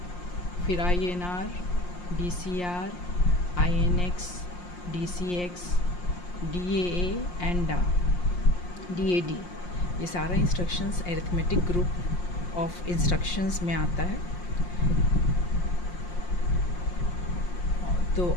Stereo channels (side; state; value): right; late; 5.6 ms